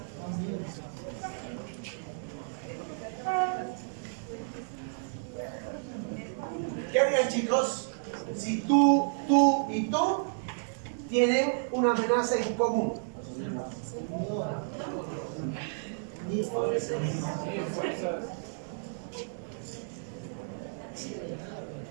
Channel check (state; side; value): silent; left; digital silence